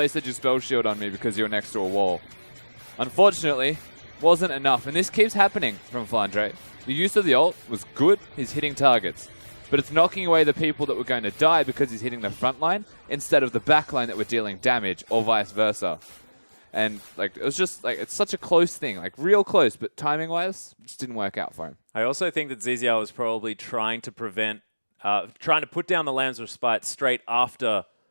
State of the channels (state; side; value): inverted; both; correlation -1.00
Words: your spell shield on me because you're next to a wall. Unfortunately, wasn't enough. And this keeps happening from Flandre. The use of the ult was good. He's hitting targets. But it's knocking away the people that were going to die because he's hitting the front line instead of the back line that were dealing damage, or vice versa. And like, it was just like, it's such a close thing, like real close, but timing wise, it just didn't work out for him. I also think that Ziziao was probably trying to put down the Lambs of Spite straight after